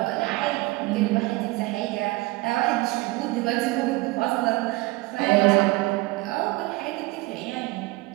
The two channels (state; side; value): quieter; left; 21.9 dB